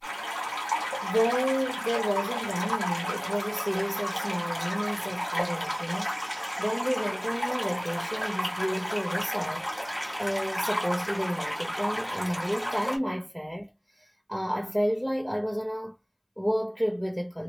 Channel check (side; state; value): both; identical; correlation 1.00